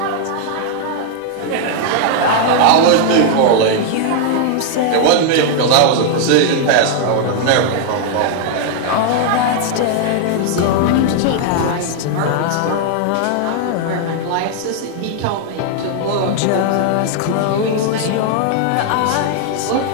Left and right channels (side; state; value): both; different; correlation 0.00